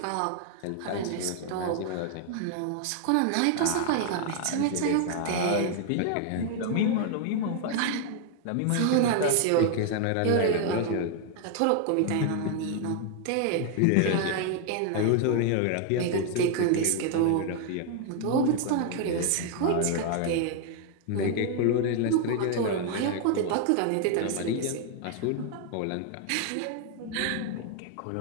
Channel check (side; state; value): both; different; correlation 0.00